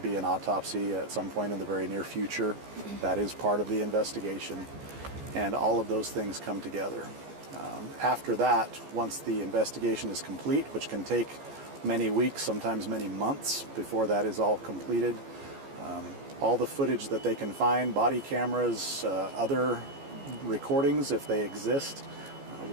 an autopsy at some point in the very near future. That is part of the investigation, and all of those things come together. After that, once the investigation is complete, which can take many weeks, sometimes many months before that is all completed, all the footage that they can find, body cameras, other recordings if they exist,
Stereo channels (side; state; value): left; late; 14 ms